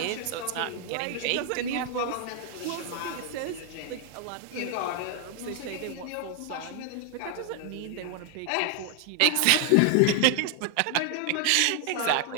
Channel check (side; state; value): both; different; correlation 0.00